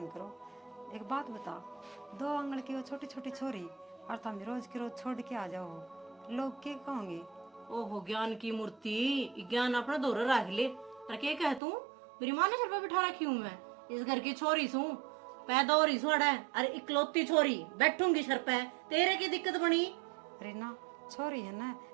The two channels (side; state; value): left; drops out; at 11.6 s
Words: करो। एक बात बता, 2 आंगल की वो छोटी छोटी छोरी और तुम रोज की रोज छोड़ के आ जाओ, लोग क्या कहोगे? ओहो ज्ञान की मूर्ति, ज्ञान अपना दौर रख ले। और क्या कह तू मेरी माँ ने सिर पर बिठा रखी हूँ, मैं इस घर की छोरी सू, पैदा हो रही सोड़ा है, अरे इकलौती छोरी बैठूंगी सर पे, तेरे की दिक्कत बनी? रीना छोरी है ना